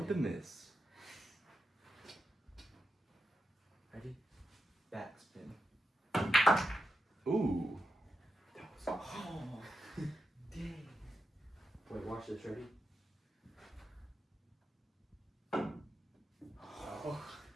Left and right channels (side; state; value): both; normal; correlation 0.86